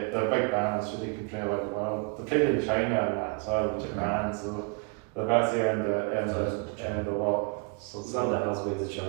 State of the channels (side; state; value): left; quieter; 35.1 dB